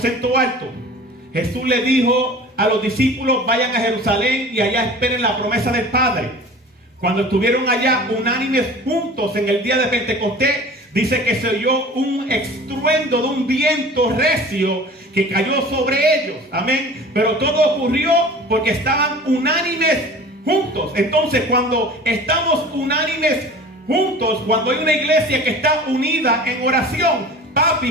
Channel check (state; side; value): normal; both; correlation 0.41